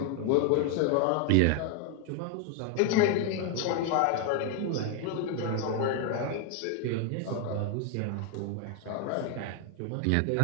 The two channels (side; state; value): both; different; correlation 0.01